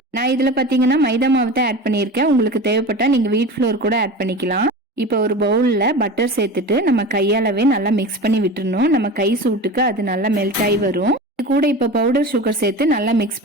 நான் இதுல பாத்தீங்கன்னா மைதா மாவு தான் ஆட் பண்ணியிருக்கேன். உங்களுக்கு தேவைப்பட்டா நீங்க வீட் ஃப்ளோர் கூட ஆட் பண்ணிக்கலாம். இப்போ ஒரு பவுல்ல பட்டர் சேர்த்துட்டு நம்ம கையாலவே நல்லா மிக்ஸ் பண்ணி விட்டுறணும். நம்ம கை சூட்டுக்கு அது நல்லா மெல்ட் ஆகி வரும். இது கூட இப்ப பவுடர் சுகர் சேர்த்து நல்லா மிக்ஸ்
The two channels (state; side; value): normal; both; correlation 0.31